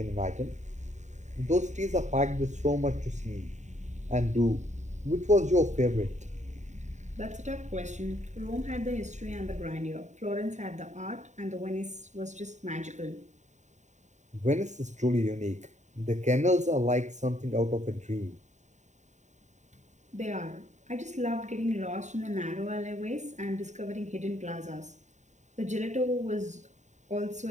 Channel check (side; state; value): left; late; 0.34 ms